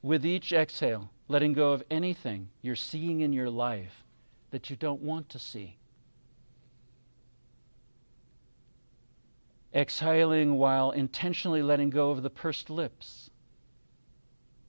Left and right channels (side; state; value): both; inverted; correlation -1.00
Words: With each exhale, letting go of anything you're seeing in your life that you don't want to see. Exhaling while intentionally letting go of the pursed lips,